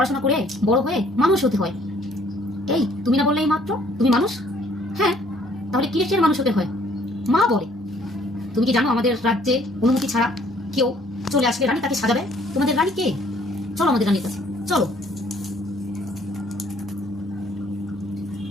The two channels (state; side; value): normal; both; correlation 0.61